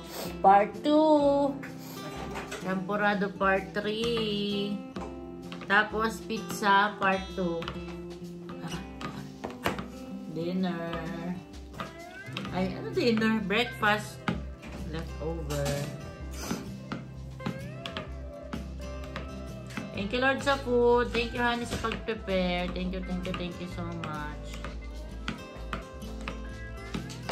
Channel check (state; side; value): identical; both; correlation 1.00